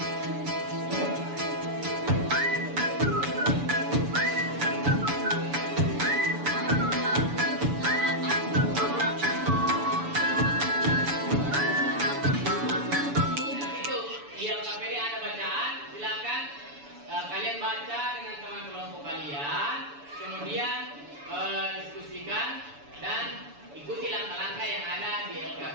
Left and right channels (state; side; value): late; left; 7.0 ms